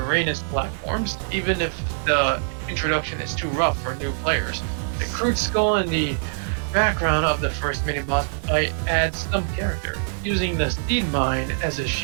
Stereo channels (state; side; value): silent; left; digital silence